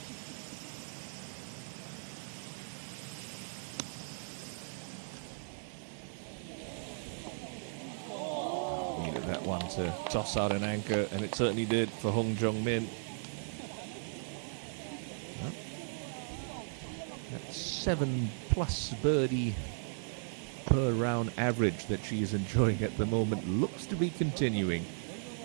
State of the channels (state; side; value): silent; left; 54 dB below the other